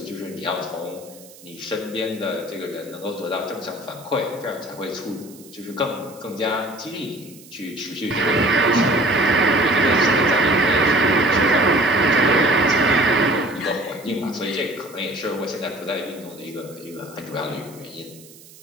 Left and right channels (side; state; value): right; noise; hiss, 22 dB below the sound